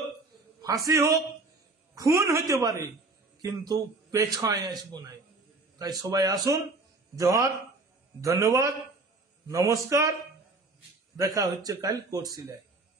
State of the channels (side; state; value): left; quieter; 3.4 dB